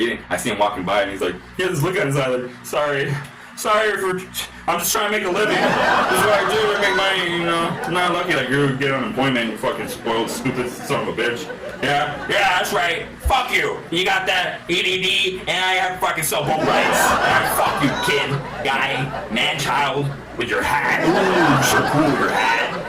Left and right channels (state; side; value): identical; both; correlation 1.00